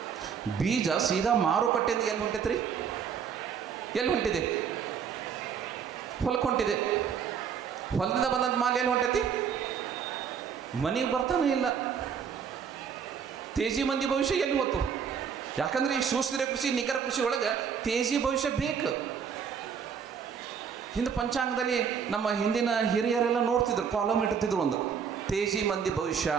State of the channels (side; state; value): left; quieter; 7.1 dB